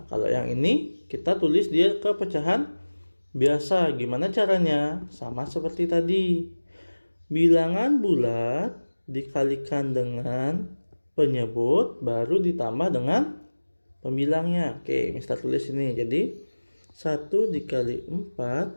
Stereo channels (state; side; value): inverted; both; correlation -1.00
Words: kalau yang ini kita tulis dia ke pecahan biasa. Gimana caranya? Sama seperti tadi. Bilangan bulat dikalikan dengan penyebut baru ditambah dengan pembilangnya. Oke, Mister tulis ini. Jadi 1 dikali